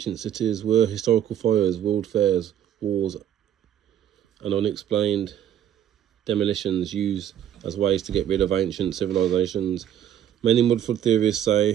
cities were historical fires, world fairs, wars, and unexplained demolitions used as ways to get rid of ancient civilizations. Many mudflood theorists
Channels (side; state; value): left; quieter; 10.3 dB